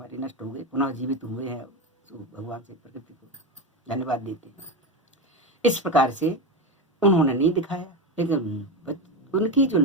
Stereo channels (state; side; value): normal; both; correlation 0.16